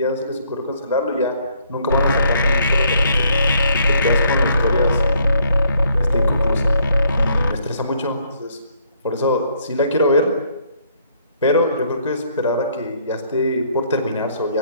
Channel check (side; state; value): both; inverted; correlation -0.67